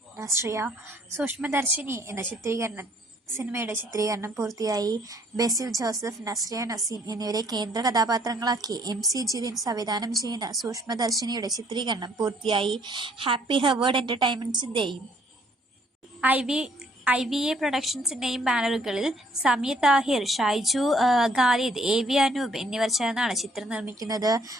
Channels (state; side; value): normal; both; correlation 0.63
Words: നസ്രിയ. സൂക്ഷ്മദർശിനി എന്ന സിനിമയുടെ ചിത്രീകരണം പൂർത്തിയായി. ബേസിൽ ജോസഫ്, നസ്രിയ നസീം എന്നിവരെ കേന്ദ്ര കഥാപാത്രങ്ങളാക്കി MC ജിതിൻ സംവിധാനം ചെയ്യുന്ന സൂക്ഷ്മദർശിനിയുടെ ചിത്രീകരണം പൂർത്തിയായി. ഹാപ്പി ഹവേർഡ് എൻ്റർടൈൻമെൻറ്റ്സിൻ്റെയും IVA പ്രൊഡക്ഷൻസിൻ്റെയും ബാനറുകളിൽ സമീർ താഹിർ, ഷൈജു ഖാലിദ്, AV അനൂപ് എന്നിവർ ചേർന്നാണ് ചിത്രം നിർമ്മിക്കുന്നത്.